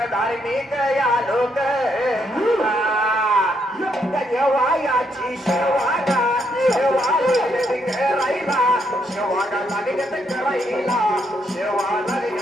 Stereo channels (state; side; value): normal; both; correlation 0.75